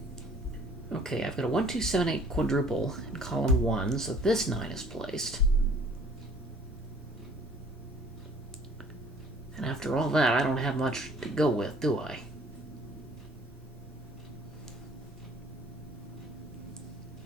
Okay, I've got a 1, 2, 7, 8 quadruple in column 1, so this 9 is placed. And after all that, I don't have much to go with, do I?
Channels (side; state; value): both; normal; correlation 0.55